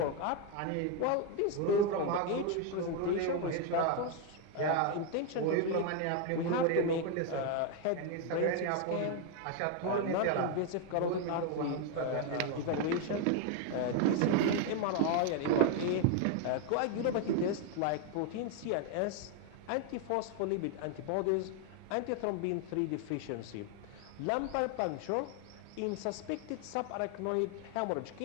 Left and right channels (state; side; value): different; both; correlation 0.01